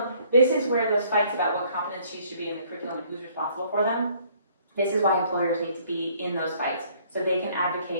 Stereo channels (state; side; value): inverted; both; correlation -0.61